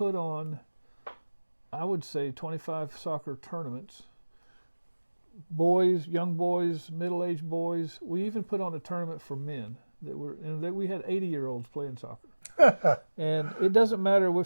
on, I would say, 25 soccer tournaments. Boys, young boys, middle-aged boys. We even put on a tournament for men we had 80-year-olds playing soccer. And it doesn't matter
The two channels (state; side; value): inverted; both; correlation -1.00